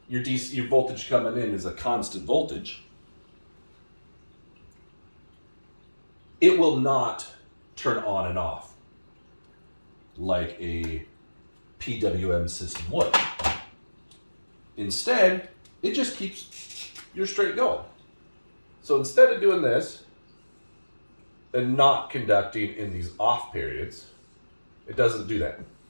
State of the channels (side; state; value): both; inverted; correlation -1.00